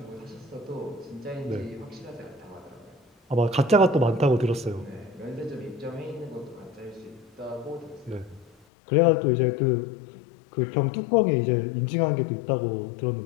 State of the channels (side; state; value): right; drops out; at 8.6 s